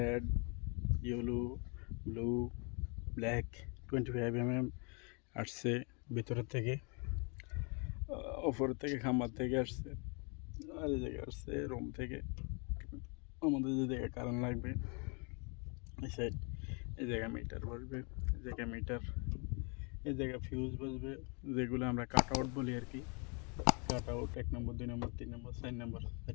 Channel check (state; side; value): quieter; right; 34.6 dB